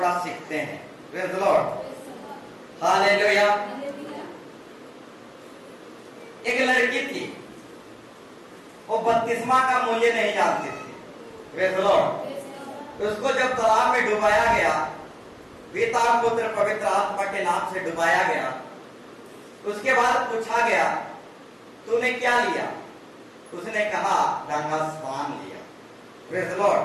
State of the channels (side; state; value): both; identical; correlation 1.00